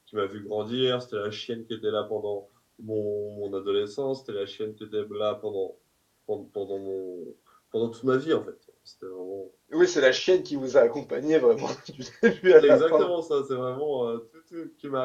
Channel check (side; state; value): both; identical; correlation 1.00